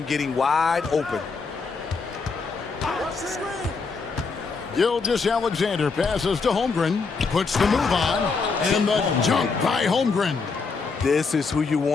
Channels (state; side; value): quieter; right; 4.6 dB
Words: getting wide open. Gilgeous-Alexander passes to Holmgren. Puts the move on. And the dunk by Holmgren. This is who you